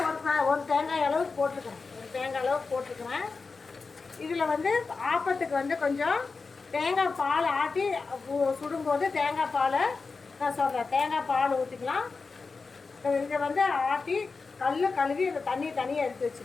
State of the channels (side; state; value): right; quieter; 4.4 dB